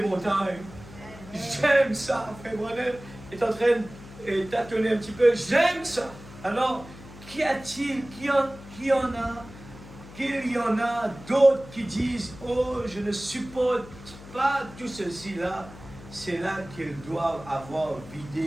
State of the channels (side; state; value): left; noise; hum, 17 dB below the sound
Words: montagnes. J'aime ça. Frère Branham est en train de tâtonner un petit peu. J'aime ça. Alors, qu'y a-t-il? Qu'il y en a d'autres qui disent, oh, je ne supporte pas tout ceci-là. C'est là qu'ils doivent avoir